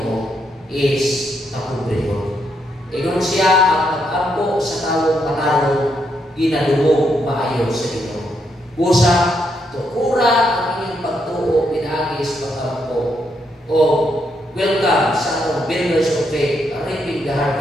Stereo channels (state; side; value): normal; both; correlation 0.78